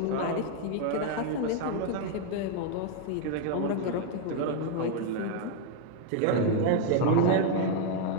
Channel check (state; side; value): different; both; correlation 0.00